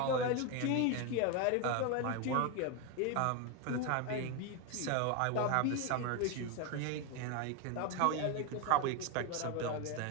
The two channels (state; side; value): different; both; correlation 0.02